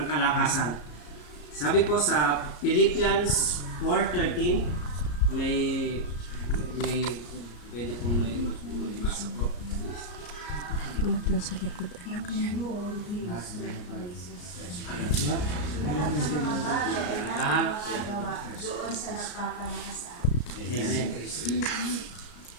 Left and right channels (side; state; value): right; late; 34 ms